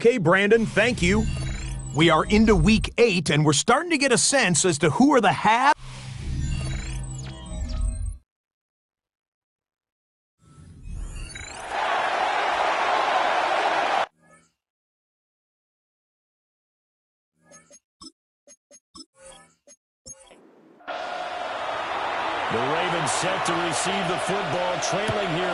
Brandon, thank you. We are into Week 8, and we're starting to get a sense as to who are the half. The Ravens set to receive the football, trailing here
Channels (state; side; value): identical; both; correlation 1.00